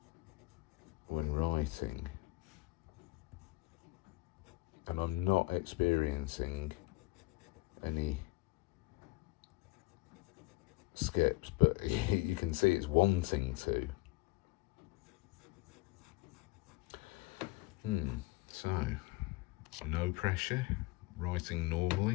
when writing, and I'm not experiencing any skips, but you can see it's wanting to. So no pressure, writing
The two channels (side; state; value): right; quieter; 21.3 dB